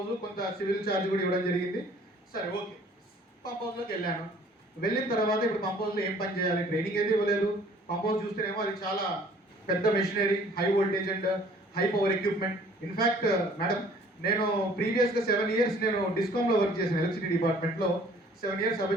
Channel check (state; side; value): normal; both; correlation 0.55